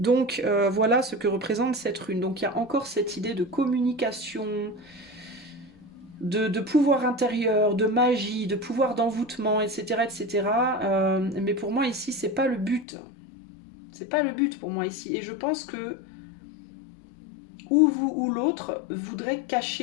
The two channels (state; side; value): drops out; right; at 12.9 s